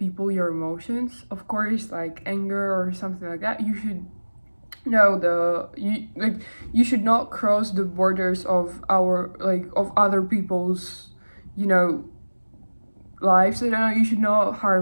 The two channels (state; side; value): inverted; both; correlation -1.00